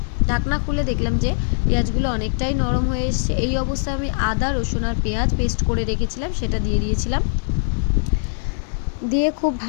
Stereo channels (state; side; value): silent; right; digital silence